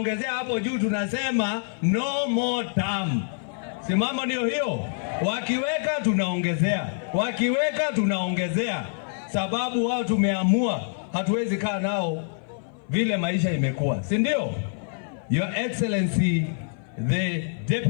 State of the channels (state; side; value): silent; right; 57 dB below the other